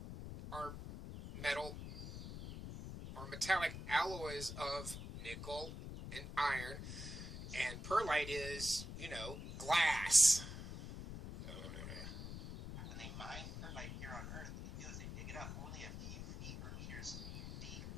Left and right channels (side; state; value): left; noise; rumble, 8 dB below the sound